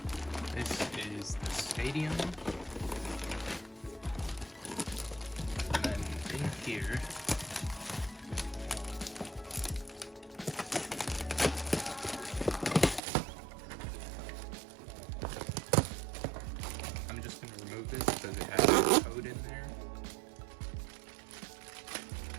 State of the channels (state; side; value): drops out; left; at 13.0 s